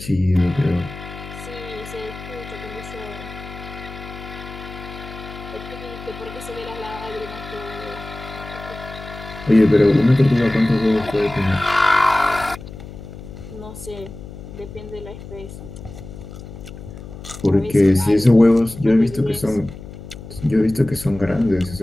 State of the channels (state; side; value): noise; left; hum, 13 dB below the sound